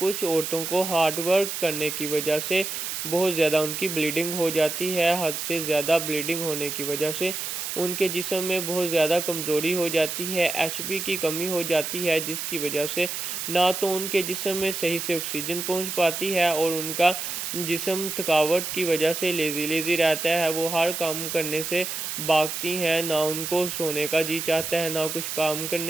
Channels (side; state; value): right; noise; hiss, 4 dB below the sound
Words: औरतों को हार्ड वर्क करने की वजह से बहुत ज़्यादा उनकी ब्लीडिंग हो जाती है, हद से ज़्यादा ब्लीडिंग होने की वजह से उनके जिस्म में बहुत ज़्यादा कमज़ोरी हो जाती है, एचबी की कमी हो जाती है, जिसकी वजह से ना तो उनके जिस्म में सही से ऑक्सीजन पहुंच पाती है और उनका जिस्म थकावट की वजह से लेज़ी रहता है, वो हर काम करने से भागती हैं, ना उनको सोने का जी चाहता है, ना कुछ काम